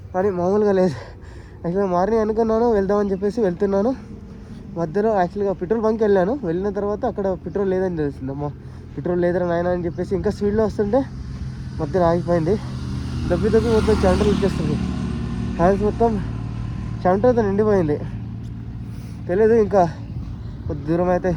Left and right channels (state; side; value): identical; both; correlation 1.00